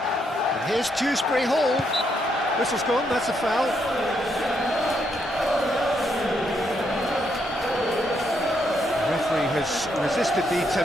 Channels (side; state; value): both; normal; correlation 0.76